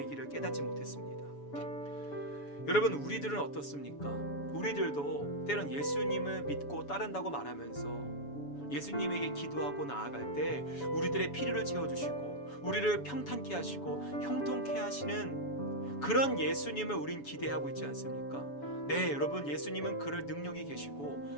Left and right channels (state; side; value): late; right; 7.1 ms